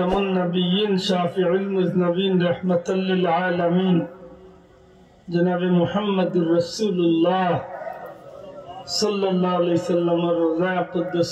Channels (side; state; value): both; identical; correlation 1.00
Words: নবিয়্যিন শাফিউল মুজনবিন রাহমাতাল লিল আলামিন জনাবে মুহাম্মদুর রাসূলুল্লাহ সাল্লাল্লাহু আলাইহি সাল্লামের রোজা